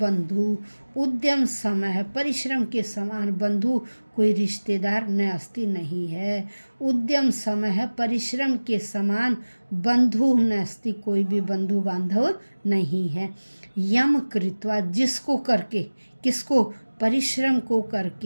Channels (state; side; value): inverted; both; correlation -1.00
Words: उद्यम समय, परिश्रम के समान, बंधु, कोई रिश्तेदार, न अस्ति, नहीं है। उद्यम समय, परिश्रम के समान, बंधु न अस्ति, कोई भी बंधु बांधव नहीं है। यम कृत्वा, जिसको करके, किसको, परिश्रम को